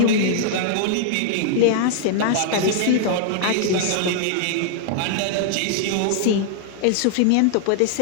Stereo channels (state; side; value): different; both; correlation -0.01